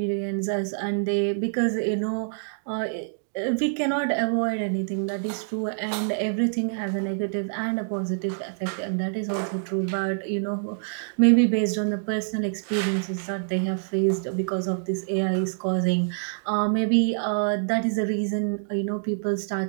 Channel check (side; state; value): left; silent; digital silence